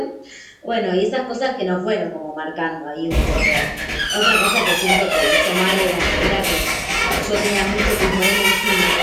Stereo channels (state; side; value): identical; both; correlation 1.00